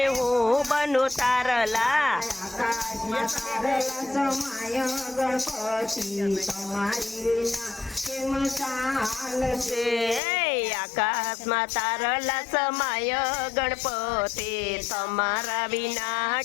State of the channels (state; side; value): drops out; right; at 10.2 s